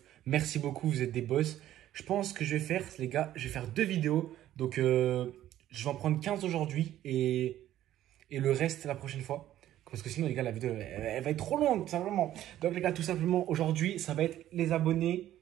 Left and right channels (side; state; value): left; quieter; 12.8 dB